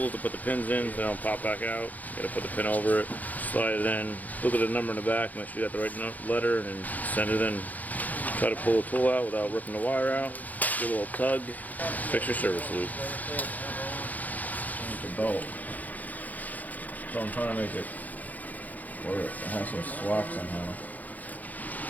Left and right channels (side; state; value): right; late; 0.080 ms